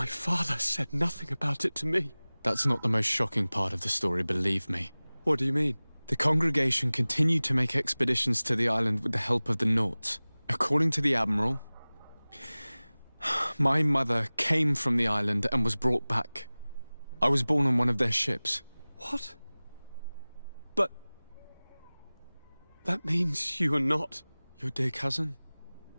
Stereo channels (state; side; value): inverted; both; correlation -0.99